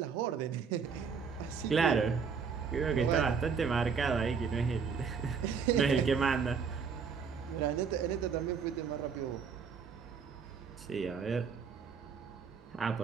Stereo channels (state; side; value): quieter; left; 6.0 dB